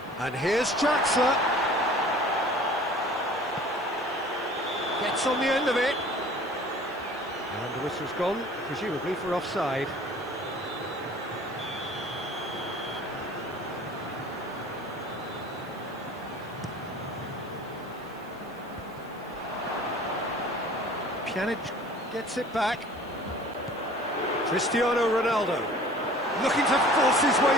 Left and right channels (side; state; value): right; noise; hiss, 27 dB below the sound